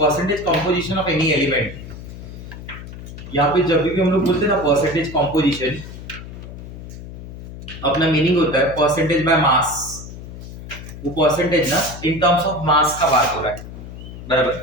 composition of any element. यहाँ पे जब भी हम लोग बोलते हैं ना परसेंटेज कंपोजिशन, अपना मीनिंग होता है परसेंटेज बाय मास। वो परसेंटेज ना इन टर्म्स ऑफ मास का बात हो रहा है, बराबर।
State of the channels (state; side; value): noise; left; hum, 12 dB below the sound